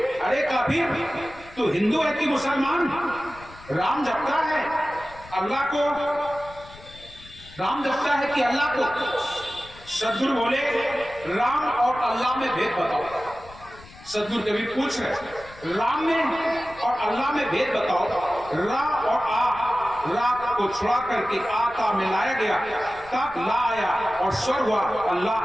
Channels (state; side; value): noise; left; rumble, 20 dB below the sound